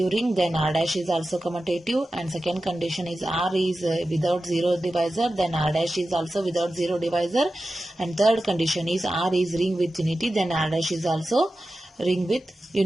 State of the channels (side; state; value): both; normal; correlation 0.93